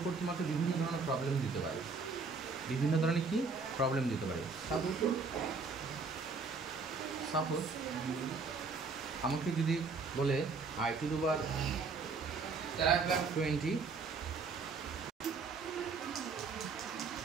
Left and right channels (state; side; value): quieter; left; 4.5 dB